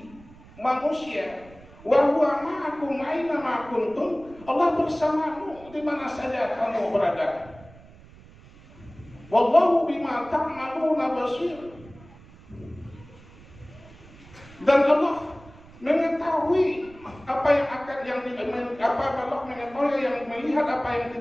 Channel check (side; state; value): right; noise; rumble, 22 dB below the sound